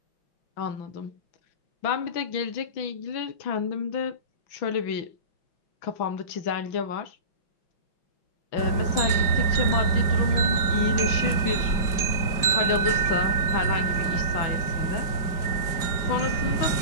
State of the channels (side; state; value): right; late; 5.1 ms